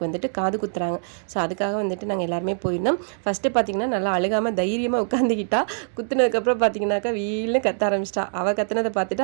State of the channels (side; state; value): left; silent; digital silence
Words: வந்துட்டு காது குத்துறாங்க. ஸோ அதுக்காக வந்துட்டு நாங்கள் எல்லாருமே போயிருந்தோம். ஃபஸ்ட்டு பார்த்தீங்கன்னா நல்லா அழுகாமல் தைரியமாக உட்காந்துக்கிட்டா. குத்துனதுக்கப்புறம் பார்த்தீங்கன்னாக்கா வீல்னு கத்த ஆரம்பிச்சிட்டா. அவள் கத்துனதை